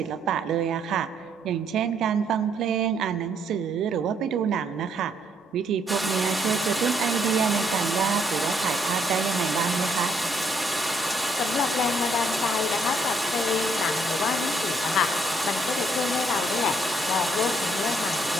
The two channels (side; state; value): both; normal; correlation 0.71